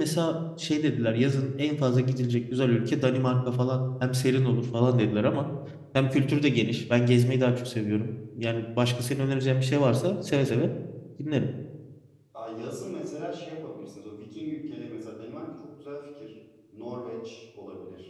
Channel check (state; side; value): identical; both; correlation 1.00